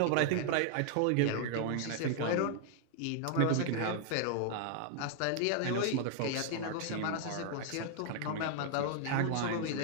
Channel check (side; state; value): both; different; correlation 0.00